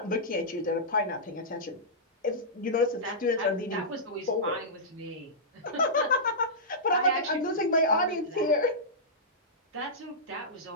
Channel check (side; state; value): both; normal; correlation -0.14